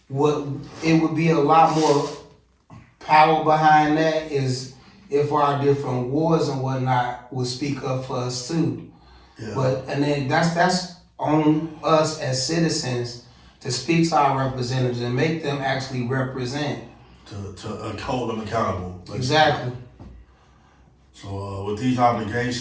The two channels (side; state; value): both; identical; correlation 1.00